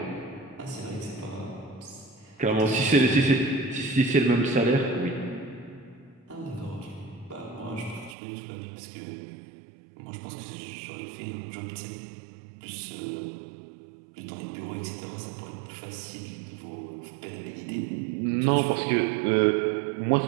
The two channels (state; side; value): drops out; left; at 8.2 s